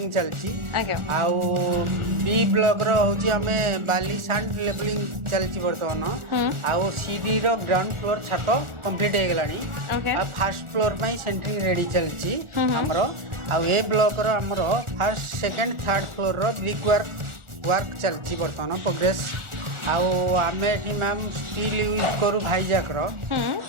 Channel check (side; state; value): left; late; 1.4 ms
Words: चलची आउ बी ब्लॉक रो होची हमें बाली सैंड लेवलिंग चलची वर्तमान आउ सी डी रो ग्राउंड फ्लोर छत कंप्लीट हो गलानी आ फर्स्ट फ्लोर पई सेंटरिंग रेडी चलची हमरो आउ ए ब्लॉक रो हमरो फर्स्ट सेकंड थर्ड फ्लोर रो ब्रिक वर्क चलची बर्तमान प्रोग्रेस आउ आमे एठी मैम स्टील यूज करू भाईजाक रो